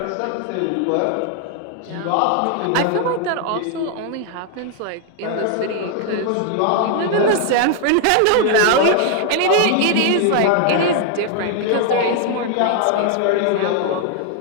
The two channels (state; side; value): different; both; correlation 0.00